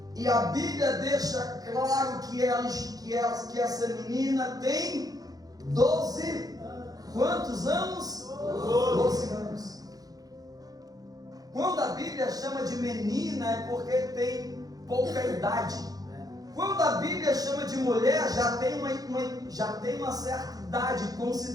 e a Bíblia deixa claro que essa menina tem 12, quantos anos? 12 anos. Quando a Bíblia chama de menina é porque tem pouca idade. Quando a Bíblia chama de mulher, já tem uma certa idade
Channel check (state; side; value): late; left; 0.18 ms